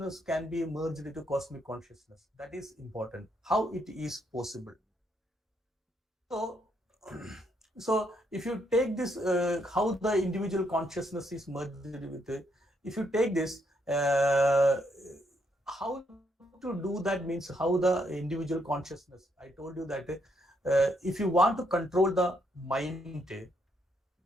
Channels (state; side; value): normal; both; correlation 0.75